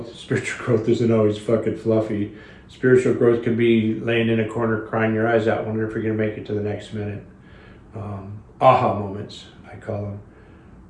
Spiritual growth isn't always fucking fluffy. Spiritual growth can be laying in a corner crying your eyes out, wondering if you're going to make it to the next minute. Aha moments, I call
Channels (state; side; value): identical; both; correlation 1.00